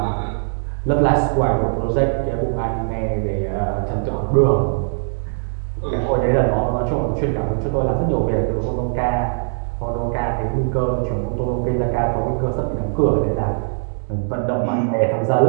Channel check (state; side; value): silent; left; digital silence